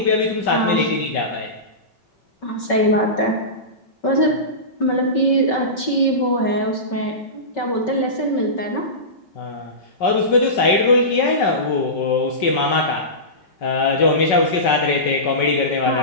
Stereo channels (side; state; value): right; late; 5.3 ms